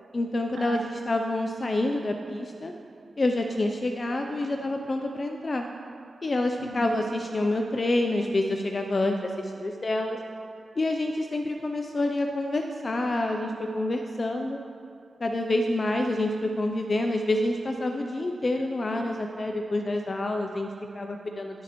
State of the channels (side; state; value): both; normal; correlation 0.92